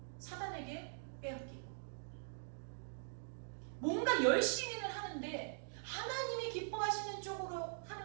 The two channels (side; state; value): left; silent; digital silence